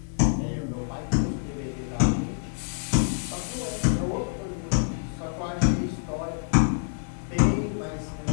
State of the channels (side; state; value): right; silent; 60 dB below the other